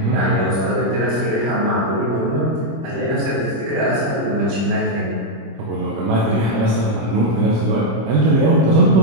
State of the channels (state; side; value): late; left; 25 ms